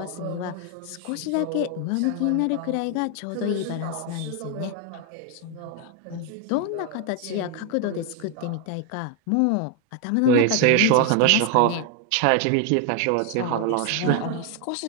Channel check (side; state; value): both; different; correlation 0.01